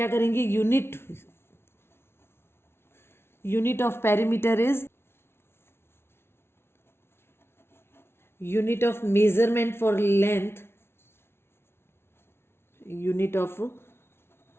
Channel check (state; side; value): late; right; 0.12 ms